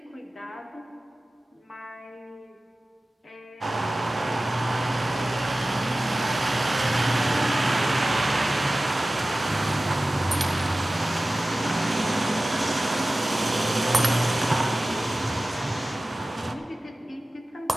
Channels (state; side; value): normal; both; correlation 0.96